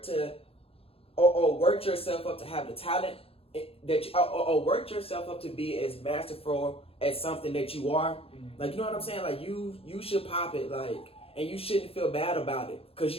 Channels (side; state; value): right; late; 0.28 ms